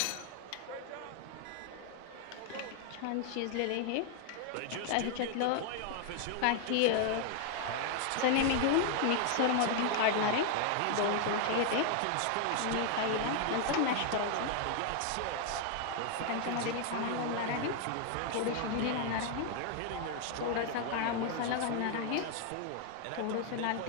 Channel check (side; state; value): both; different; correlation 0.00